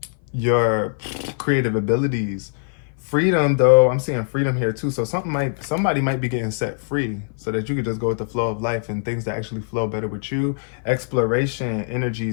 creative abilities. Freedom though, I'm seeing freedom here too. So somebody might be getting set free so that you could just go with the flow of life and things that actually flow better with you. Exploration energy.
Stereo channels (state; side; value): silent; right; 57 dB below the other